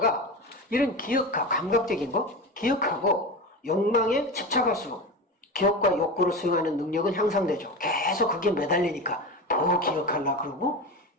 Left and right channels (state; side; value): normal; both; correlation 0.25